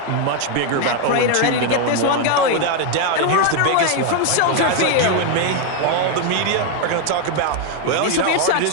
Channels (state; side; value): different; both; correlation 0.01